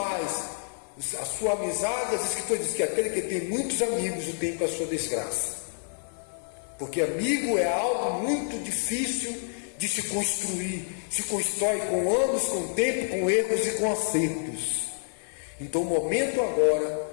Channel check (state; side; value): silent; right; digital silence